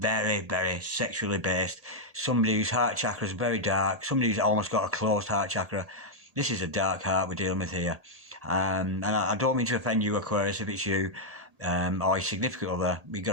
very sexually based. Somebody whose heart chakra is very dark. Somebody who's almost got a closed heart chakra. This is a dark heart we're dealing with here. And I don't mean to offend you, Aquarius, if it's you or your significant other. We've got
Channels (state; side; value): late; left; 1.8 ms